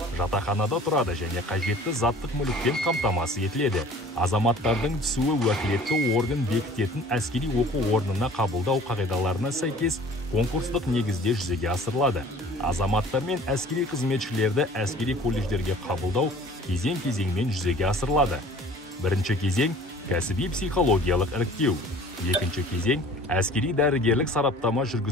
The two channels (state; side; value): normal; both; correlation 0.49